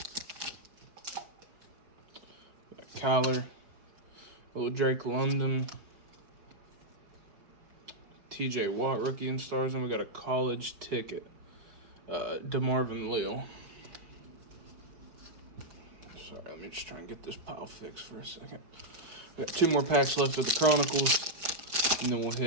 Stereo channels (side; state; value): left; late; 5.2 ms